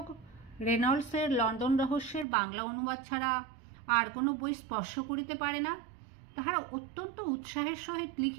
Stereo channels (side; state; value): left; drops out; at 2.2 s